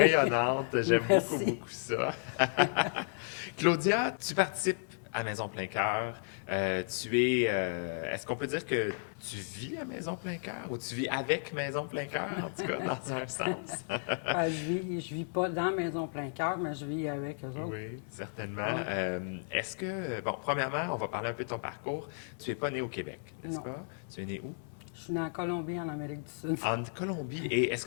j'aime beaucoup, Merci. beaucoup ça. Claudia, tu participes à Maison Plein Cœur. Est-ce qu'on peut dire que tu vis à Maison Plein Cœur ou tu vis avec Maison Plein Cœur, en tout cas, dans un sens? Je vis pas dans Maison Plein Cœur, mais je vis avec eux autres. Oui, certainement. Ouais. Est-ce que, bon, premièrement, on va parler un peu de ton parcours. Tu n'es pas né au Québec, n'est-ce Non. pas? Tu es né où? Je suis née en Colombie, en Amérique du Sud. En Colombie. Et est-ce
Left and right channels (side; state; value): right; silent; 55 dB below the other